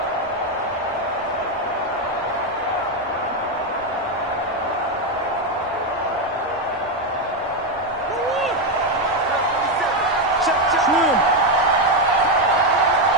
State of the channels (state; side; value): normal; both; correlation 0.07